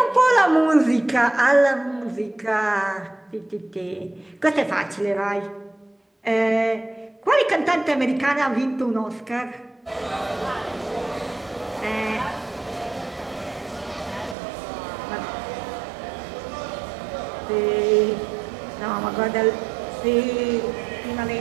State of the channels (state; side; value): drops out; left; at 14.4 s